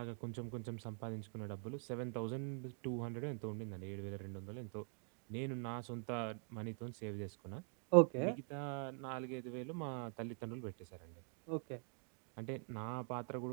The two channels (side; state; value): left; quieter; 38.6 dB